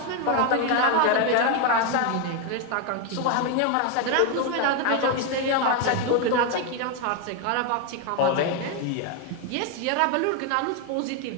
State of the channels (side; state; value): both; different; correlation 0.01